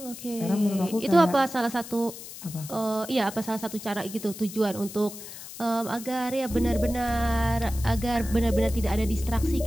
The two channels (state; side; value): noise; left; hiss, 13 dB below the sound